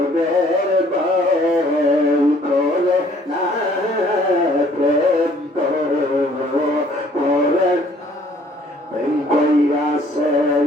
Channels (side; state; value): both; normal; correlation 0.59